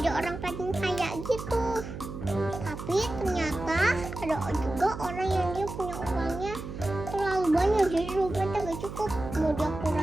orang paling kaya gitu. Tapi ternyata ada juga orang yang dia punya uangnya terlalu banyak, jadi dompetnya gak cukup, mau dia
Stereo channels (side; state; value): right; noise; hum, 9 dB below the sound